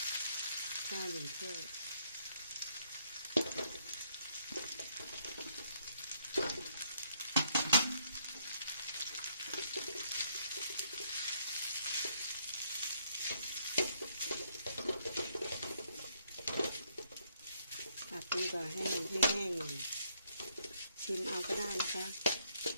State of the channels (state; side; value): inverted; both; correlation -0.71